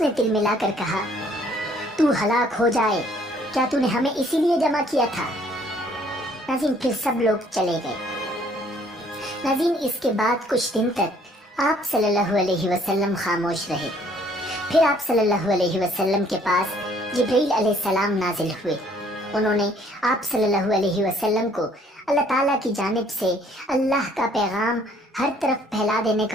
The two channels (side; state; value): both; normal; correlation 0.61